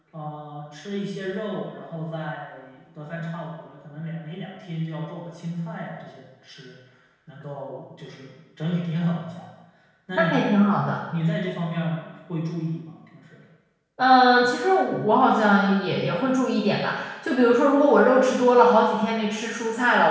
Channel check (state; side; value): identical; both; correlation 1.00